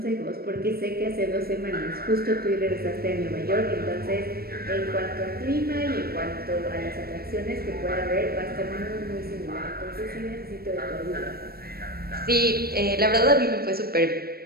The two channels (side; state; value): left; late; 0.44 ms